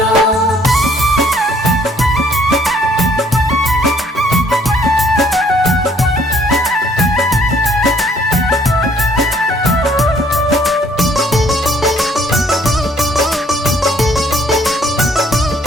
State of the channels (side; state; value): both; normal; correlation 0.62